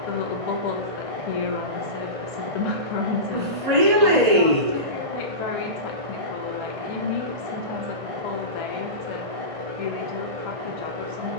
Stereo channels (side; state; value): left; late; 1.8 ms